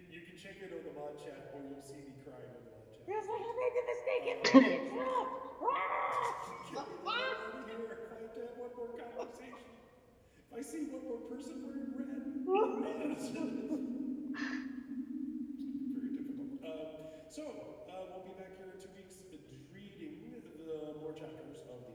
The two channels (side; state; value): both; identical; correlation 1.00